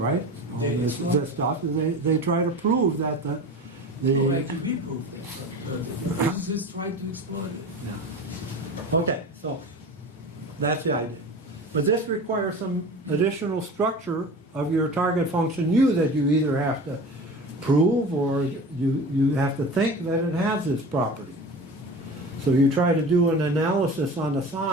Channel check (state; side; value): normal; both; correlation 0.34